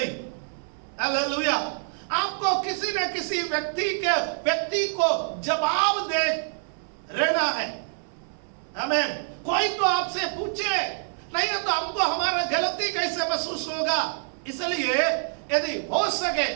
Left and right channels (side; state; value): left; silent; 61 dB below the other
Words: Hallelujah. आपको किसी न किसी व्यक्ति को जवाब दे रहना है। आमीन। कोई तो आपसे पूछे, नहीं है तो हमको हमारा गलती कैसे महसूस होगा। इसलिए यदि हो सके,